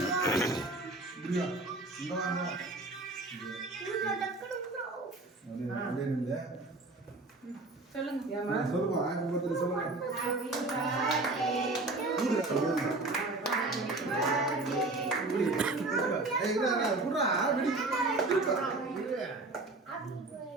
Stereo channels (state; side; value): quieter; left; 3.1 dB